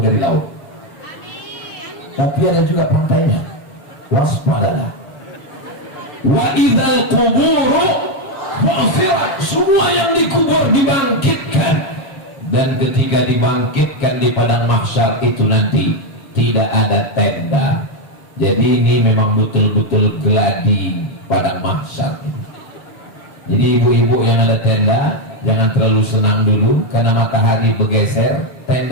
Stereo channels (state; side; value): late; right; 6.9 ms